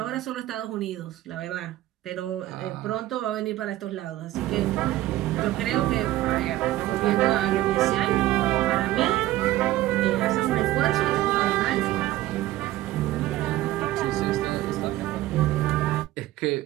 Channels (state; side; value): quieter; left; 15.6 dB